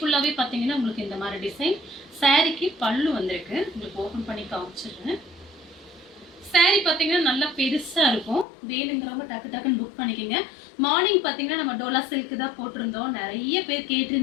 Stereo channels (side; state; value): right; drops out; at 8.5 s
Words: பாத்தீங்கன்னா உங்களுக்கு இந்த மாதிரி டிசைன். சாரிக்கு பல்லு வந்திருக்கு, உங்களுக்கு ஓபன் பண்ணி காமிச்சிடுறேன். சாரி பாத்தீங்கன்னா நல்லா பெருசா இருக்கும், வேணுங்கிறவங்க டக்கு டக்குன்னு புக் பண்ணிக்கோங்க. மார்னிங் பாத்தீங்கன்னா நம்ம டோலா சில்க் தான் போட்டிருந்தோம், நிறைய பேர்